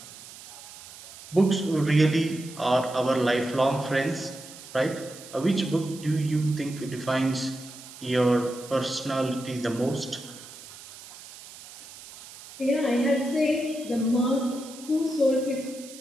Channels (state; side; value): noise; right; hiss, 17 dB below the sound